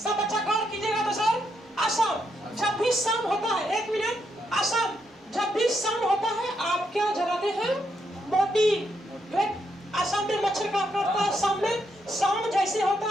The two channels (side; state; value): both; normal; correlation 0.79